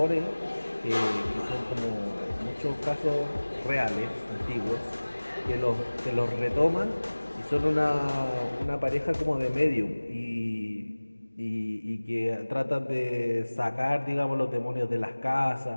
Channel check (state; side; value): inverted; both; correlation -1.00